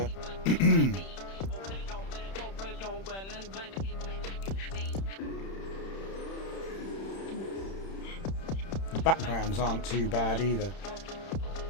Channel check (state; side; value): late; right; 31 ms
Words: Backgrounds aren't too bad either.